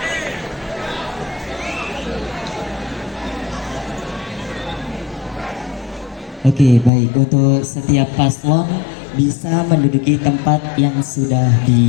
Oke, baik. Untuk setiap paslon bisa menduduki tempat yang sudah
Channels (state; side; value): drops out; right; at 6.9 s